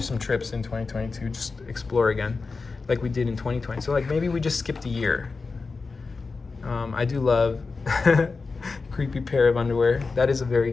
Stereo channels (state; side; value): quieter; right; 4.3 dB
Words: some trips in 2022, just explore again like we did in 2020. So like maybe we just skipped a year. I do love Creepy Pair of Underwear. That is a very